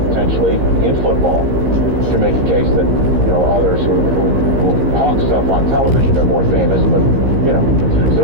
in football. To make a case that, others who hawk stuff on television are more famous, but,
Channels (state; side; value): late; left; 15 ms